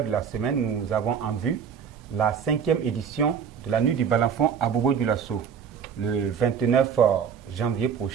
de la semaine, nous avons en vue la 5e édition de la Nuit du Balafon à Bobo-Dioulasso, le 29 janvier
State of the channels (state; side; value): quieter; left; 7.3 dB